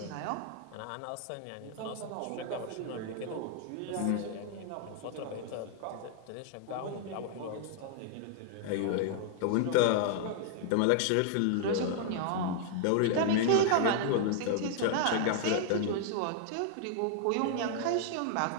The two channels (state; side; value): different; both; correlation -0.01